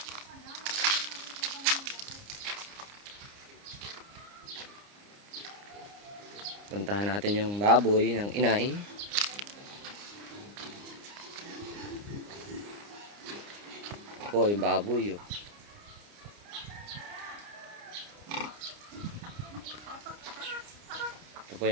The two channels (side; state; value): left; late; 29 ms